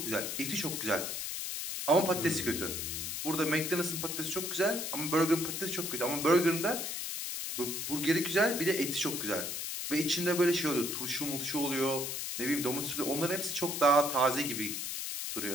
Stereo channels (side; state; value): left; noise; hiss, 4 dB below the sound